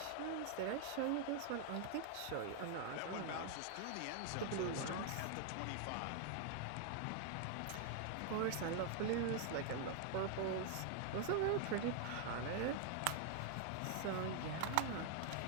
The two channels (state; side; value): different; both; correlation 0.00